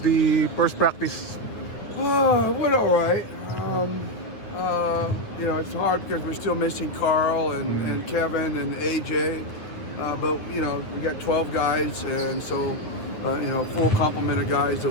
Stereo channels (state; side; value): late; right; 9.2 ms